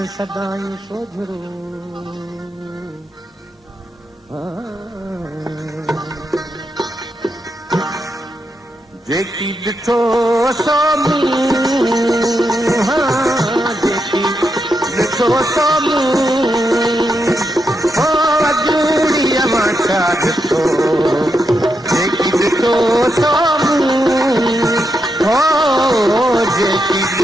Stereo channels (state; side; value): normal; both; correlation 0.84